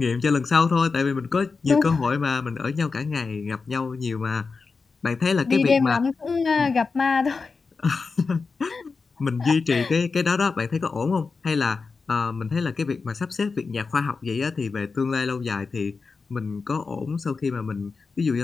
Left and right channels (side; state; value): right; quieter; 4.6 dB